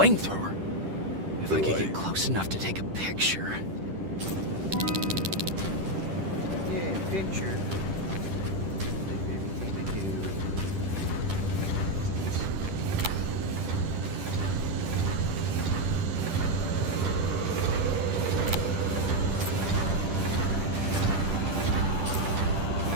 flamethrower. If I could get close enough to take a picture. Yeah, picture. Everything to do.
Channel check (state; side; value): late; left; 10 ms